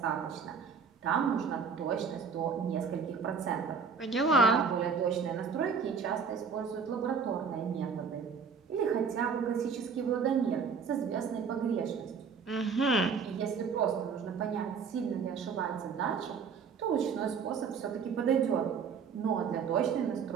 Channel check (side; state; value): left; quieter; 5.9 dB